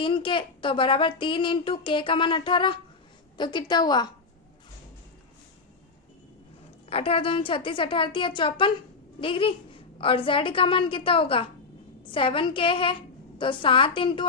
के, तो बराबर 3 इंटू K का मान 18, तो कितना हुआ 18 दूनी 36, 18 54 डिग्री। और Z का मान कितना होगा 7K है, तो 7 इंटू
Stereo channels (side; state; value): right; quieter; 4.4 dB